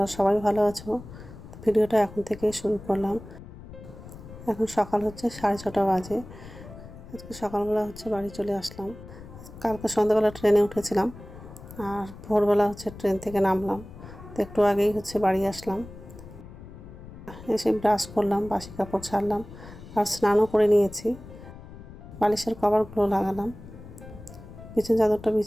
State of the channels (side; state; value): left; noise; rumble, 16 dB below the sound